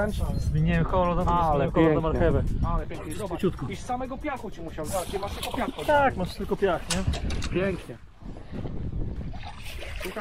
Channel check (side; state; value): both; identical; correlation 1.00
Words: Zmieniłem kolor, Ale kolor na pięknie. marchewę. Ale pięknie. Zobacz. Szybciutko. I z samego piachu ci musiał. Zobacz, nie masz tylko piachu. Tak, masz tylko piach, nie? Pięknie.